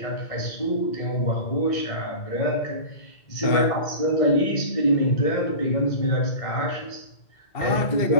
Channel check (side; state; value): right; late; 2.1 ms